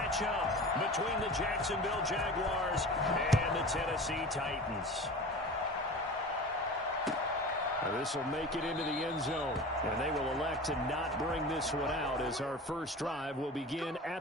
up between the Jacksonville Jaguars and the Tennessee Titans. This will make it into the end zone, and they will elect to not bring this one out as our first drive will begin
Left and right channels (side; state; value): both; normal; correlation 0.35